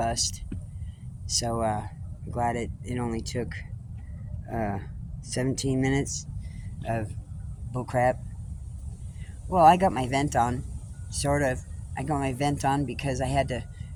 So I'm glad it only took 17 minutes of bullcrap. Well, I got my vent on, sort of. I got my vent on because I had to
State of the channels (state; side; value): identical; both; correlation 1.00